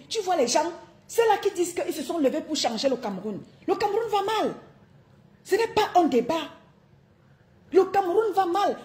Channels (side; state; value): both; identical; correlation 1.00